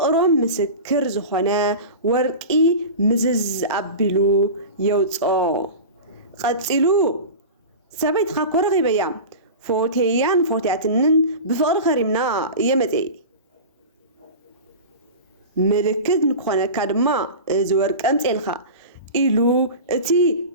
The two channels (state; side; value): inverted; both; correlation -0.30